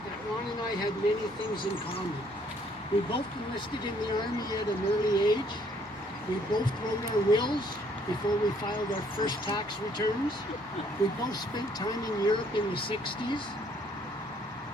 that Ron and I had many things in common. We both enlisted in the Army at an early age. We both wrote our wills before we filed our first tax returns. We both spent time in Europe in the 60s.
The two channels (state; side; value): normal; both; correlation 0.64